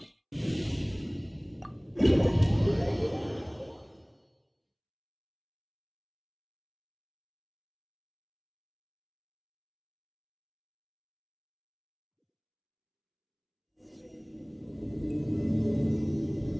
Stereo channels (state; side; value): identical; both; correlation 1.00